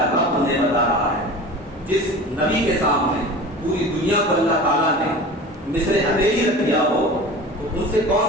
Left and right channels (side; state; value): both; normal; correlation 0.36